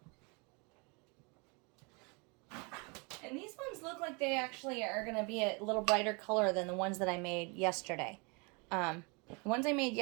And these ones look like they actually are going to be a little brighter color than the ones that I made yesterday. The ones I made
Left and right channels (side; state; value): left; quieter; 31.1 dB